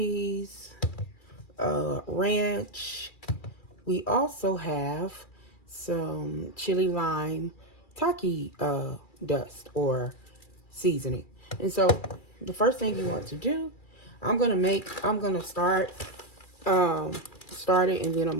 ranch. We also have some chili lime taki dust or seasoning. And so the first thing you want to do, I'm gonna start it, and then I'm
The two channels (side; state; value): right; late; 2.4 ms